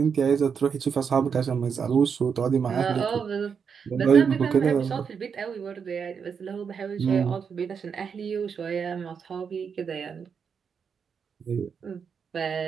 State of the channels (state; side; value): quieter; left; 6.5 dB